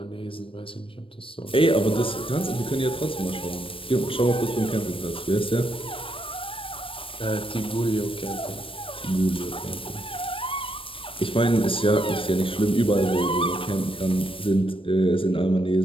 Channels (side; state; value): right; late; 0.25 ms